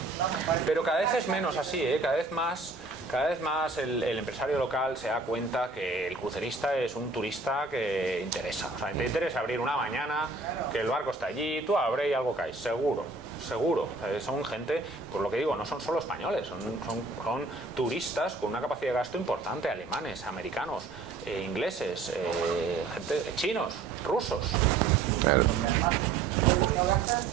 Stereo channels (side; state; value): left; quieter; 3.9 dB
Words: Pero cada vez es menos así, ¿eh? Cada vez más el empresario local se da cuenta que el crucerista es un turista que interesa. O sea, te interesa abrir una mañana, que el barco está allí, tú abres y algo cae, seguro. O sea, son gente, por lo que digo, no son solo españoles, son turistas con una capacidad de gasto importante, alemanes, americanos, ingleses, gente, chinos, rusos. Claro. No gastas,